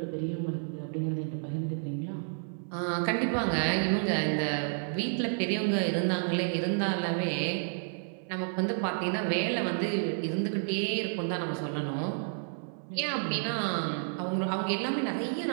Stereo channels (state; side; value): silent; left; 57 dB below the other